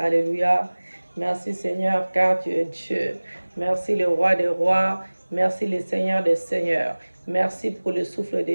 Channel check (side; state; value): both; inverted; correlation -1.00